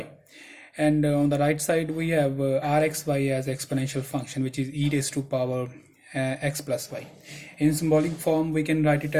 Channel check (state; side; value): identical; both; correlation 1.00